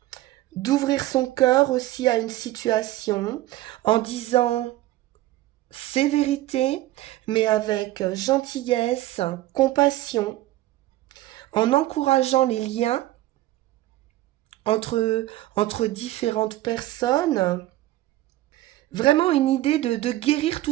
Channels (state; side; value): quieter; left; 16.0 dB